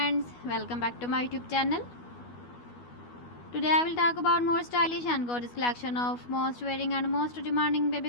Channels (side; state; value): right; late; 12 ms